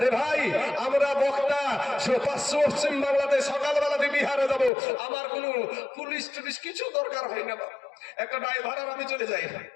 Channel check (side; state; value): right; drops out; at 4.7 s